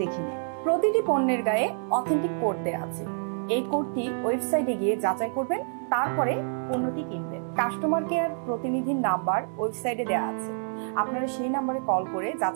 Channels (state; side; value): silent; left; 60 dB below the other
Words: দেখে নিন। প্রতিটি পণ্যের গায়ে অথেন্টিক কোড দেওয়া আছে। এই কোডটি ওয়েবসাইটে গিয়ে যাচাই করবেন, তারপরে পণ্যটি কিনবেন। কাস্টমার কেয়ার প্রতিনিধির নাম্বার ওয়েবসাইটে দেওয়া আছে, আপনারা সেই নাম্বারে কল করে